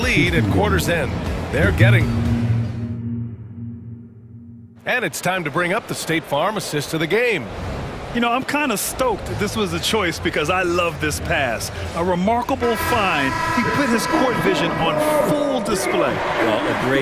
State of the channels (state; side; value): identical; both; correlation 1.00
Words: at quarter's end. They're getting. And it's time to bring up the State Farm assist of the game. You know, I'm kind of stoked this was a choice because I love this pass. A remarkable find. He put his court vision on full display. Well, a